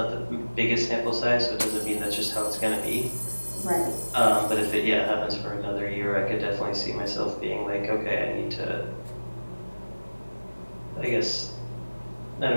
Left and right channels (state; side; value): inverted; both; correlation -1.00